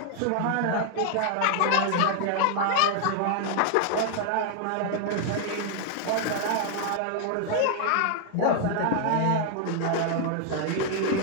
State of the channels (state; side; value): different; both; correlation 0.00